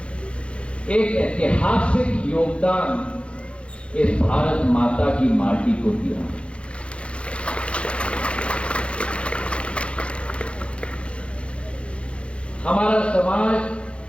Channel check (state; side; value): late; right; 0.059 ms